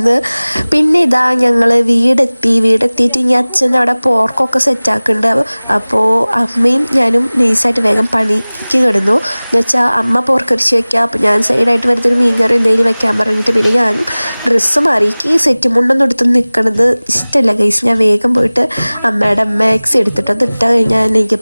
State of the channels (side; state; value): both; inverted; correlation -1.00